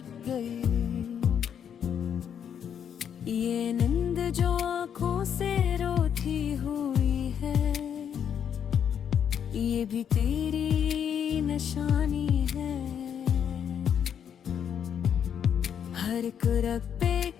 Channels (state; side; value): quieter; right; 8.4 dB